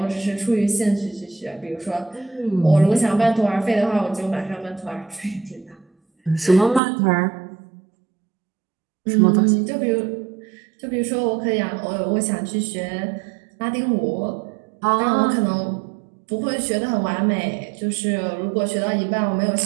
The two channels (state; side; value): drops out; left; at 6.8 s